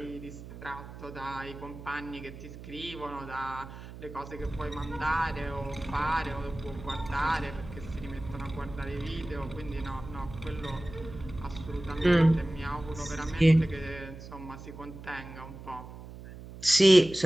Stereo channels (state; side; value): noise; right; hum, 14 dB below the sound